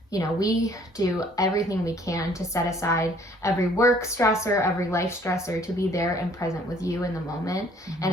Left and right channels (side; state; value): both; normal; correlation 0.59